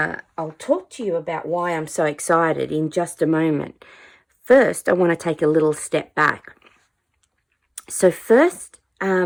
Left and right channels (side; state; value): both; identical; correlation 1.00